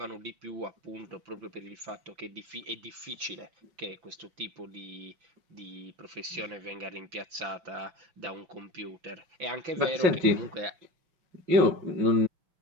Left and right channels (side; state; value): left; late; 5.9 ms